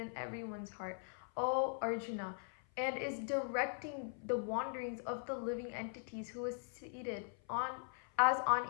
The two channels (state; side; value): silent; right; 51 dB below the other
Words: everyone's heart, O Arjuna, and is directing the wanderings of the living entities, who is seated as on